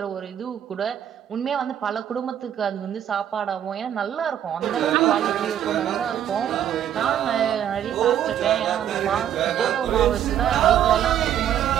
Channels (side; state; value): left; quieter; 10.2 dB